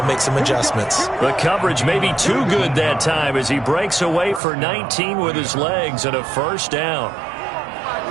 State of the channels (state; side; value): drops out; left; at 4.4 s